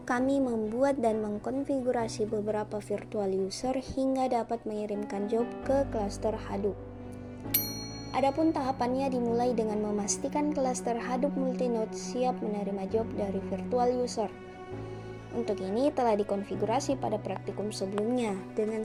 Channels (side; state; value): both; identical; correlation 1.00